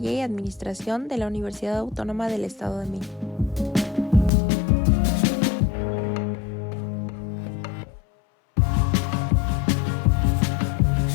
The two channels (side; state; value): right; drops out; at 4.3 s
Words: y Administración de la Universidad Autónoma del Estado de México.